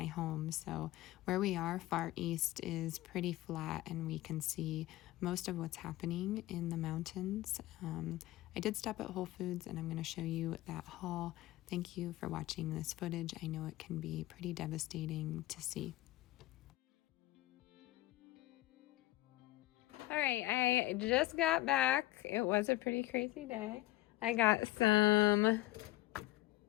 home. So where we are, far east, is pretty flat, and we can see most of what's happening in the mountains. I did stop at Whole Foods, and I'm going to show you that haul. Thank you for watching this footage. I know it can be pretty devastating to see. All right, I just got back. It was a pretty crazy day. I got some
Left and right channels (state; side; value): quieter; right; 17.3 dB